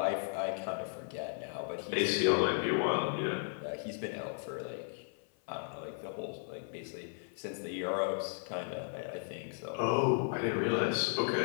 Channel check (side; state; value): right; silent; 54 dB below the other